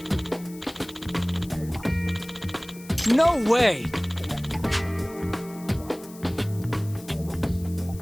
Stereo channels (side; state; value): left; noise; hiss, 20 dB below the sound